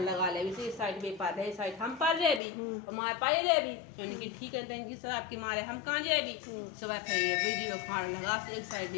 लगा ले इसी साइड में पार है साइड हम पार रहे भी और माए पाए रहे भी तो इनकी ठीक है इनकी शराब की मारे हम कहाँ जाए भी। सुबह फिर बिजू खाड़ो लगा एक साइड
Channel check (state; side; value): drops out; right; at 2.4 s